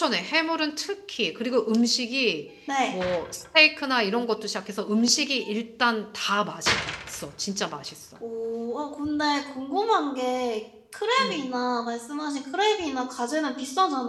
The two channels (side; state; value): both; identical; correlation 1.00